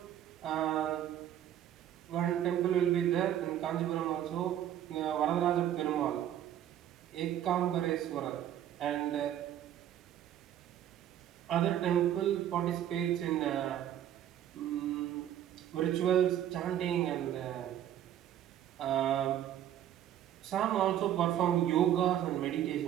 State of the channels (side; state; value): left; quieter; 11.1 dB